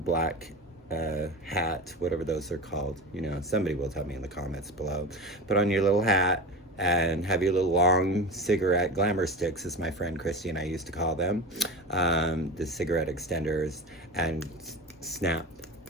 hat, whatever those are called, you know, somebody will tell me in the comments below. Put on your little hat and have your little long cigarette glamour sticks, as my friend Christy and I used to call them, the cigarette extenders, and snap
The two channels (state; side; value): normal; both; correlation 0.28